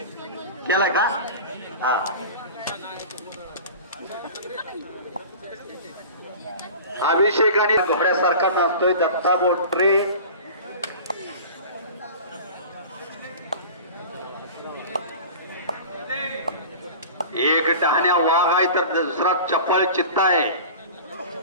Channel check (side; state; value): both; inverted; correlation -0.37